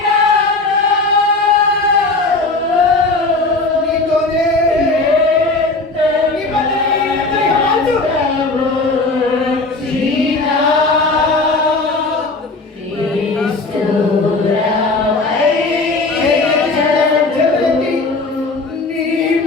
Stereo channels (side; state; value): right; quieter; 3.4 dB